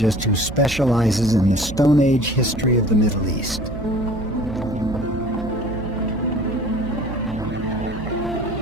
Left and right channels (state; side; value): noise; right; hum, 10 dB below the sound